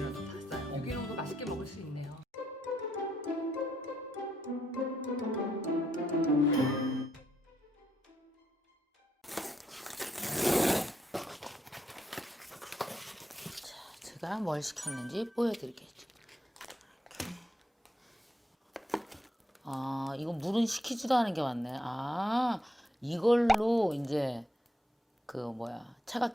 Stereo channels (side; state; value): both; normal; correlation 0.78